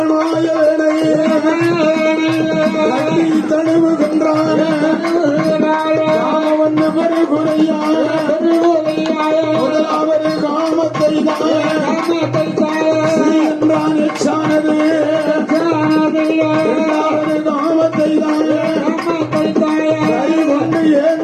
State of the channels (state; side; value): identical; both; correlation 1.00